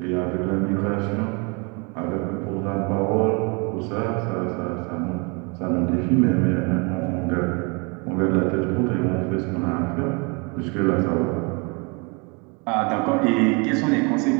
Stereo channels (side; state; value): left; quieter; 31.2 dB